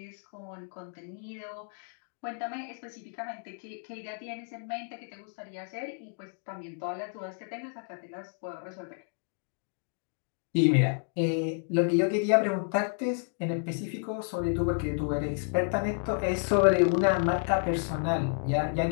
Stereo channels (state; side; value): silent; right; 57 dB below the other